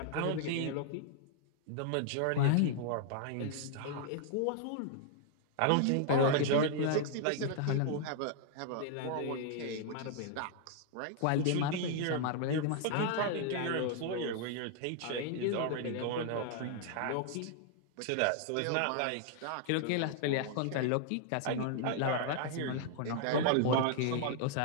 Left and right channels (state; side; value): different; both; correlation 0.00